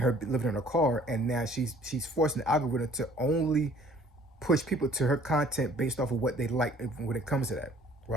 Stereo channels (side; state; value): both; normal; correlation 0.55